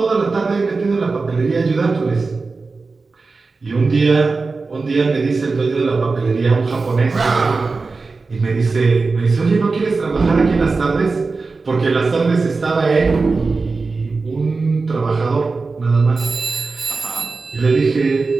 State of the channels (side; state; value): left; quieter; 4.1 dB